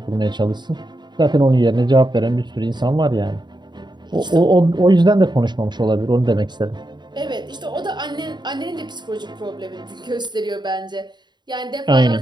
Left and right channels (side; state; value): left; late; 0.21 ms